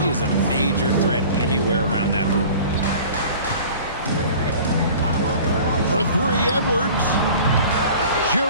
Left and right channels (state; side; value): inverted; both; correlation -0.44